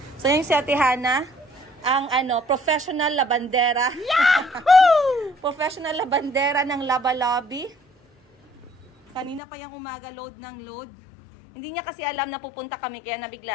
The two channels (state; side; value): drops out; right; at 9.4 s